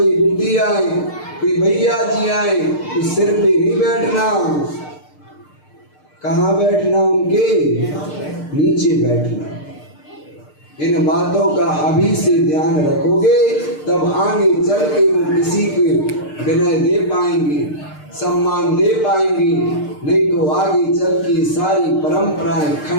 बुद्धि आए, कोई भैया जी आए तो सिर पे नहीं बैठना, कहाँ बैठना, उनके नीचे बैठना। इन बातों का अभी से ध्यान रखोगे तब आगे चल के वो किसी को विनय दे पाएंगे, सम्मान दे पाएंगे। नहीं तो आगे चल के सारी परंपराएं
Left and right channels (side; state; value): right; late; 6.6 ms